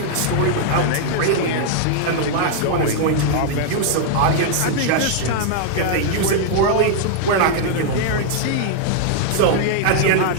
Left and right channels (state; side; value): different; both; correlation 0.00